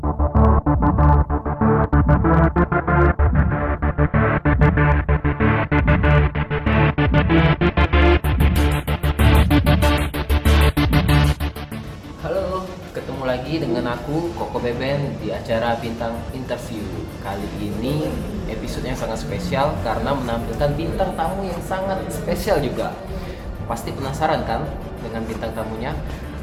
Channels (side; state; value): both; identical; correlation 1.00